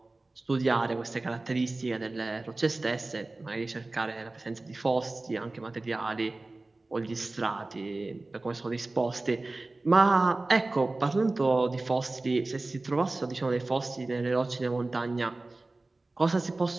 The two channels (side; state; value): left; quieter; 3.1 dB